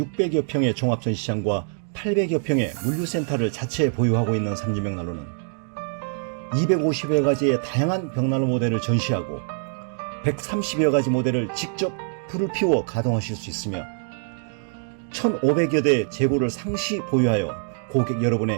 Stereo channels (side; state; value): left; silent; 56 dB below the other